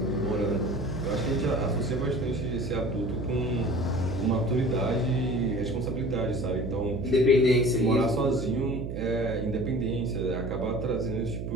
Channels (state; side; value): noise; right; hum, 5 dB below the sound